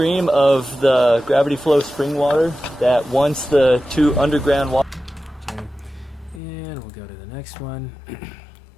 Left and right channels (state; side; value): drops out; right; at 6.4 s